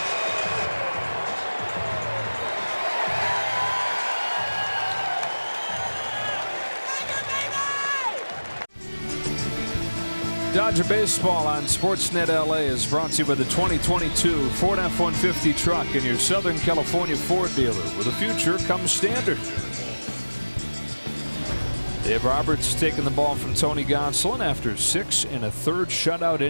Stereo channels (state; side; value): inverted; both; correlation -1.00